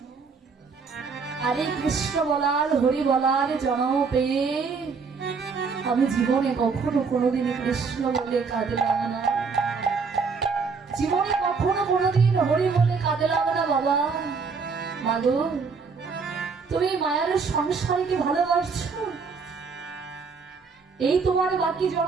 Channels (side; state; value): left; quieter; 5.1 dB